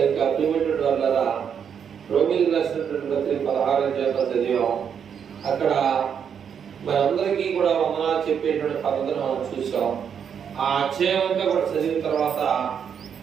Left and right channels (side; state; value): left; quieter; 7.7 dB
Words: ప్రియమైనటువంటి వాళ్ళరా, రోమిలకు రాసినటువంటి పత్రిక 16వ అధ్యాయంలో చదివాం. అక్కడ మనందరికీ కూడా వందనాలు చెప్పేటువంటి పద్ధతిని మనం చూసాం. ఆ అధ్యాయం అంతా కూడా చదివిన తర్వాత